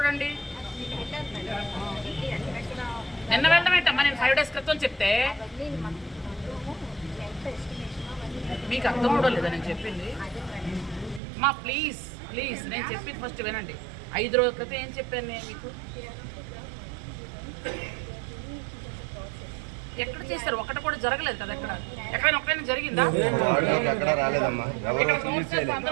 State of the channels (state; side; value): drops out; left; at 11.2 s